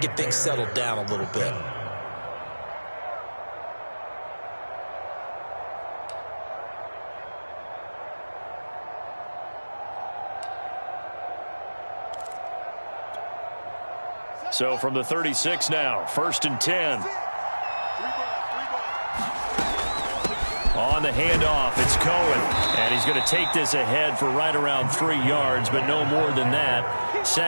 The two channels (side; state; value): both; inverted; correlation -1.00